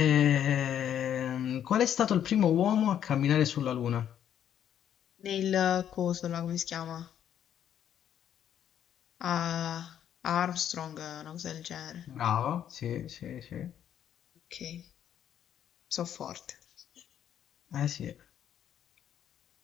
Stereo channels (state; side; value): quieter; right; 9.9 dB